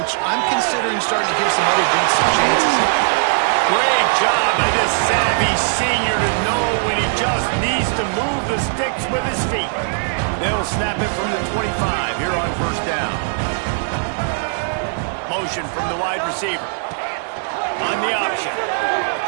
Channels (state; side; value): silent; left; digital silence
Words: coach, I'm considering starting to give some other dudes some chances. Great job by this savvy senior to know when he just needs to move the sticks with his feet. They'll snap it from the 25 here on first down. Motion from the wide receiver. On the option.